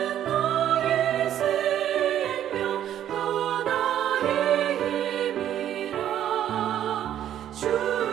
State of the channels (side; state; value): left; quieter; 11.0 dB